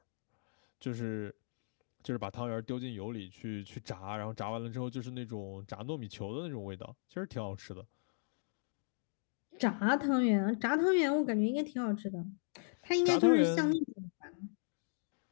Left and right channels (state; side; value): silent; right; digital silence